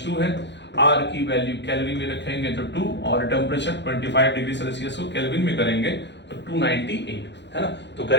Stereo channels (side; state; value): right; late; 0.51 ms